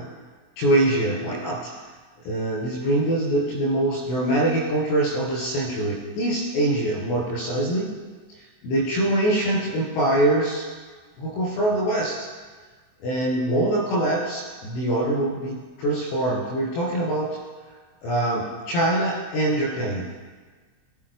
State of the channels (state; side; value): late; right; 24 ms